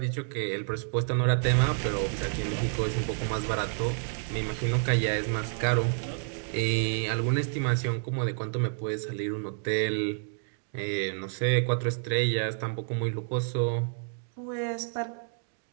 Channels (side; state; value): left; silent; 58 dB below the other